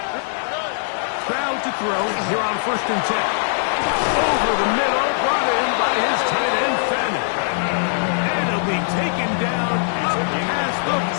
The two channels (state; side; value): silent; right; digital silence